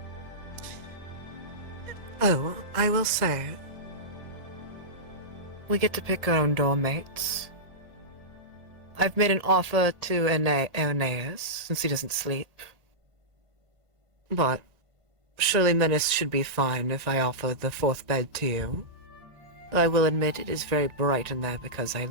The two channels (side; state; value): left; late; 1.8 ms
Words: Oh, I will say, we get to pick our own doormates. I've made an offer to Aeneas, since he doesn't sleep. But surely Menace should be fine if I offer the fourth bed to you. I will admit it is very bright in there because I